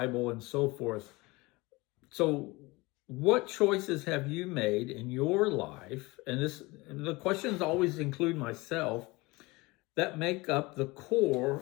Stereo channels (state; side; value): quieter; right; 23.2 dB